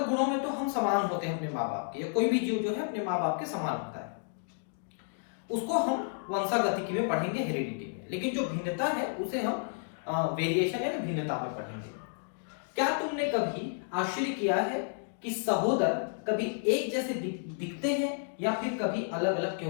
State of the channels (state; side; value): silent; right; digital silence